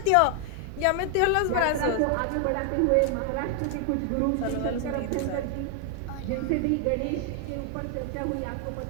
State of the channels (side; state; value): both; different; correlation 0.00